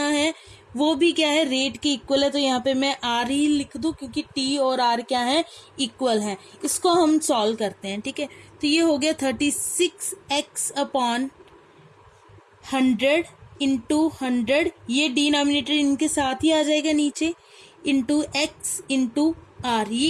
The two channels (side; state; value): both; identical; correlation 1.00